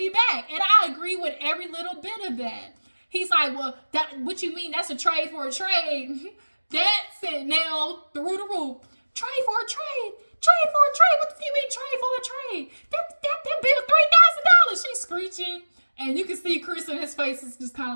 back. And I agree with every little bit of that. He's like, well, what you mean? That's a trade for a trade. That sent Nell through the roof. Trade for a trade. Trade for a trade. What do you mean trade for a trade? That bill $3,000. She's screeching. And you can see Chris in his face is just kind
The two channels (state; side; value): inverted; both; correlation -1.00